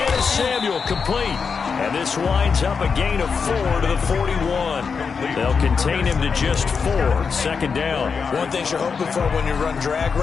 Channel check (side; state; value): right; quieter; 5.6 dB